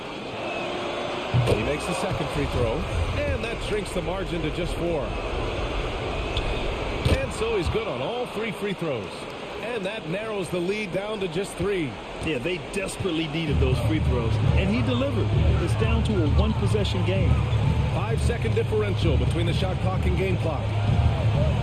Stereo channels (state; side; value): identical; both; correlation 1.00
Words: He makes the second free throw. And that shrinks the margin to just 4. And so he's good on all 3 free throws. And that narrows the lead down to just 3. Yeah, they desperately needed those free throws. And he delivered. It's down to a one-possession game. 5-second differential between the shot clock and game clock.